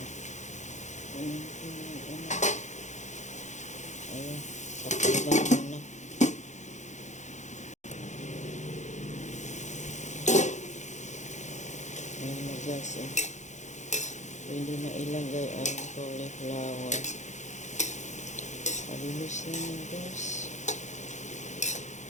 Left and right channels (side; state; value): right; late; 0.34 ms